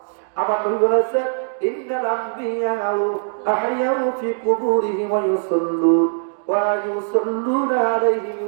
আমার নবী বলেছেন, ইন্নাল আম্বিয়া আহইয়াউ ফি কুবুরিহিম ওয়া ইউসাল্লুন ওয়া ইউসাল্লুনা আলাইহিম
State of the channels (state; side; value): silent; left; digital silence